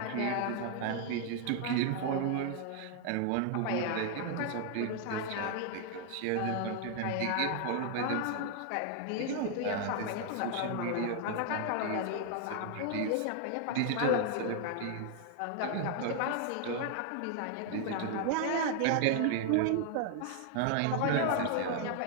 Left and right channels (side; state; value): both; different; correlation 0.00